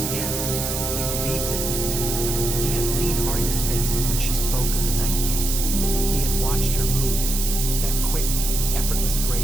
Yes, he believed it. He had seen Arya's face when she spoke of the Night King. He had watched her move, that quick, effortless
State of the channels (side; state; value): right; noise; hiss, 3 dB below the sound